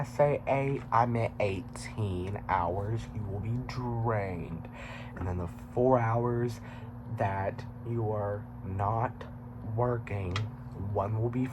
say 8? I meant 18 hours. You will be drained. And then the 4 hours that you are not working, one will be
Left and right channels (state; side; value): identical; both; correlation 1.00